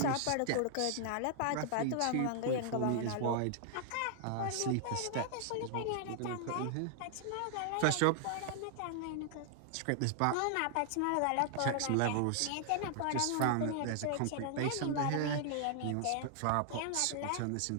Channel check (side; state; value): both; different; correlation -0.01